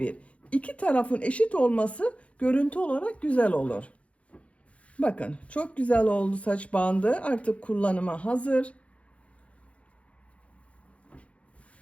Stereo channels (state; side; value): late; right; 0.063 ms